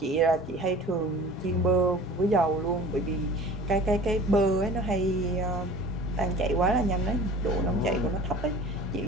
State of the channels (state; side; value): normal; both; correlation 0.43